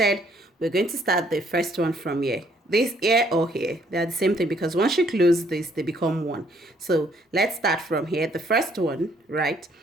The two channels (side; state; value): both; normal; correlation 0.66